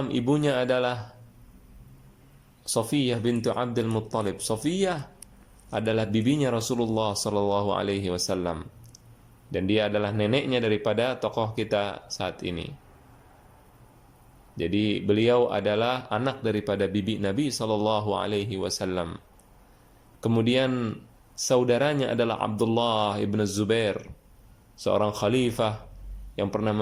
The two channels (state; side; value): identical; both; correlation 1.00